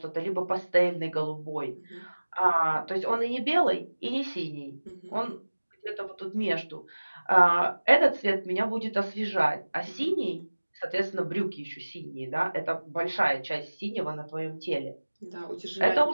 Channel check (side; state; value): both; inverted; correlation -1.00